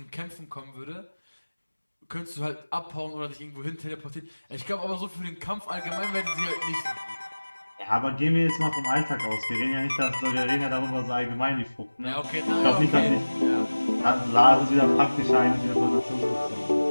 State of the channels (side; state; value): both; inverted; correlation -1.00